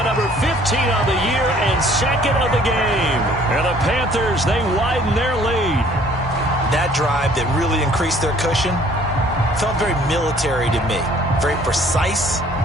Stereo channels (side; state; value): both; normal; correlation 0.57